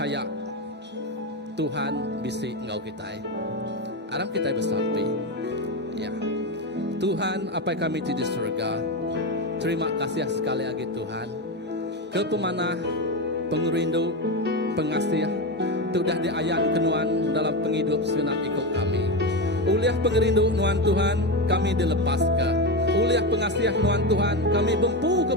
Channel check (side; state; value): both; normal; correlation 0.15